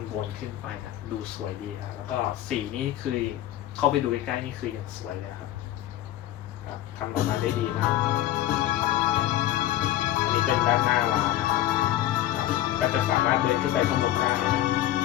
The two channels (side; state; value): right; quieter; 13.4 dB